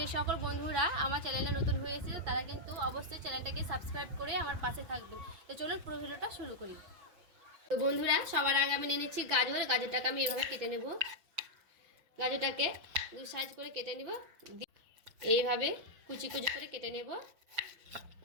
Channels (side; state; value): left; late; 5.9 ms